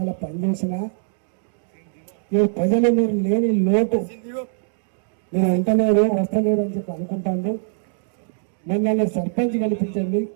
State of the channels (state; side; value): silent; left; digital silence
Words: పనిచేసిన ఈ ప్రజలు మీరు లేని లోటు నేను ఎంతలేదు వస్తలేదు అని చెప్పి అనుకుంటాను. మిమ్మల్ని సర్పంచ్ కల్పించండి,